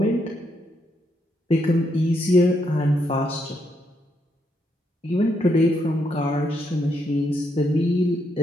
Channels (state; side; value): normal; both; correlation 0.77